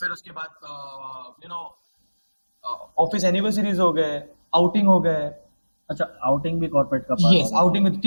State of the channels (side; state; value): both; inverted; correlation -1.00